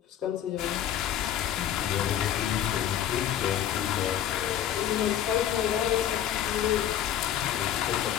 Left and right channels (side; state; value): right; quieter; 10.7 dB